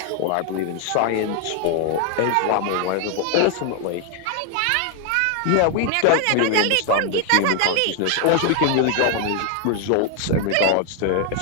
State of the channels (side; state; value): both; different; correlation 0.01